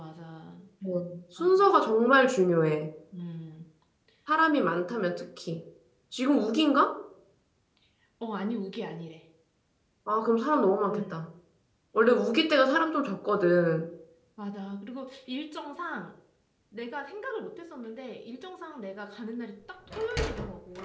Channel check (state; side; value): identical; both; correlation 1.00